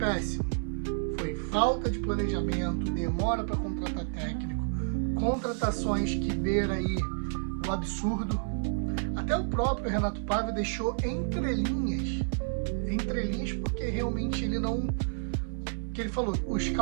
foi falta de planejamento, demora para contratar técnico, contratações que beira aí o absurdo. Até o próprio Renato Paiva deixou entrelinhas, porque realmente ele não... que ele falou, o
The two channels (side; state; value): left; silent; 58 dB below the other